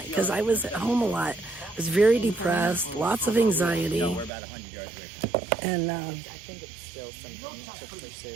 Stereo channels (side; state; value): left; drops out; at 4.3 s